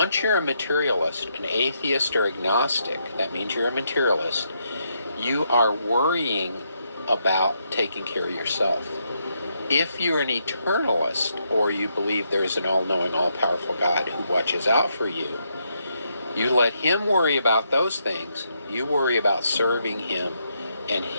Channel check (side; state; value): both; inverted; correlation -0.78